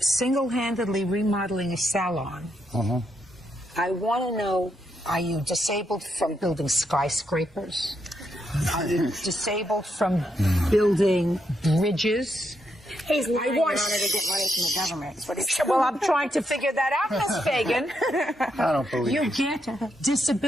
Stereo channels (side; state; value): both; normal; correlation 0.80